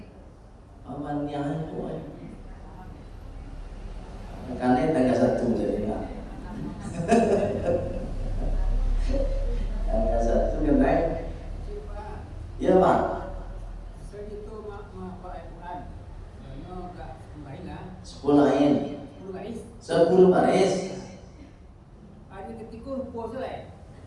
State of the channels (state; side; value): identical; both; correlation 1.00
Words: amannya bu. Karena tangga satu jadi enggak. Tangga satu kan naik. Iya Pak. Sepuluh ain, 10 baris. Hari ketika puasa lah.